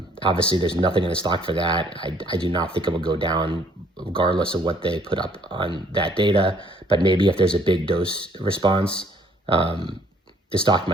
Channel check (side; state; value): both; normal; correlation 0.62